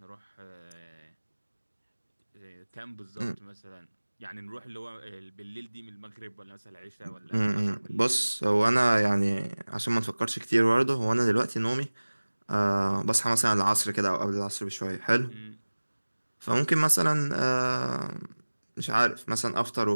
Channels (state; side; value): inverted; both; correlation -1.00